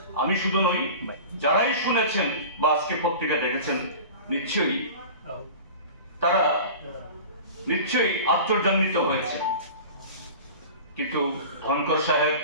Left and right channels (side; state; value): both; inverted; correlation -0.36